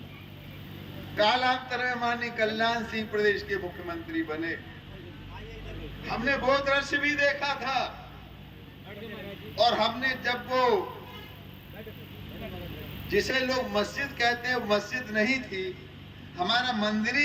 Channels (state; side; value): identical; both; correlation 1.00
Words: कालांतर में माननीय कल्याण सिंह प्रदेश के मुख्यमंत्री बने। हमने वो दृश्य भी देखा था, और हमने जब वो जिसे लोग मस्जिद कहते हैं, मस्जिद नहीं थी, हमारा मंदिर